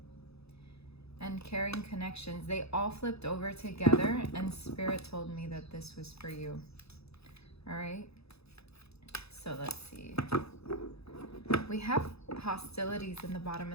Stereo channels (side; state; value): right; late; 0.78 ms